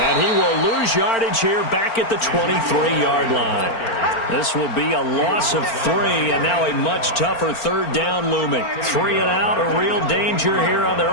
he will lose yardage here back at the 23-yard line. This will be a loss of 3, and now a much tougher 3rd down looming. 3 and out, a real danger here on their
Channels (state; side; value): late; right; 4.4 ms